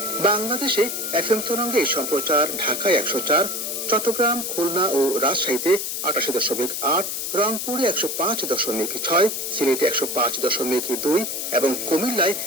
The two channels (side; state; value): left; noise; hiss, 3 dB below the sound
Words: বাংলাদেশে এফএম তরঙ্গে এই সম্প্রচার ঢাকায় 104, চট্টগ্রাম, খুলনা ও রাজশাহীতে 88.8, রংপুরে 105.6, সিলেটে 105.2 এবং কুমিল্লায়